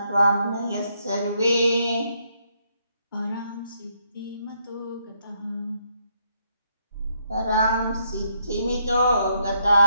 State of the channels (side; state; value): both; inverted; correlation -0.75